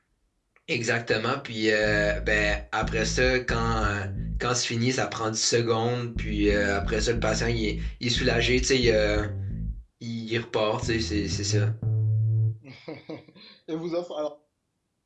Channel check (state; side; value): identical; both; correlation 1.00